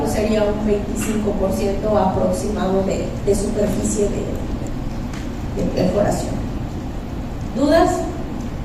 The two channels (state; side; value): identical; both; correlation 1.00